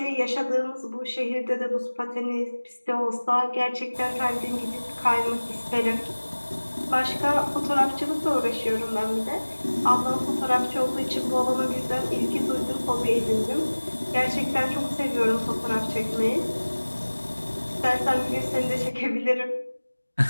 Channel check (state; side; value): inverted; both; correlation -1.00